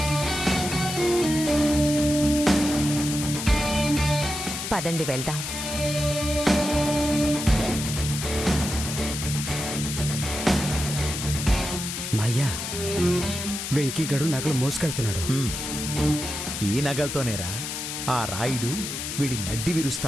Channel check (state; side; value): noise; left; hiss, 5 dB below the sound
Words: పదండి వెళ్దాం. మాయ్యా, వెంకీగడు నగలు మోసుకెళ్తున్నాడు. ఈ నగలతోనేరా ఆ రాయుడు వీడి నడ్డి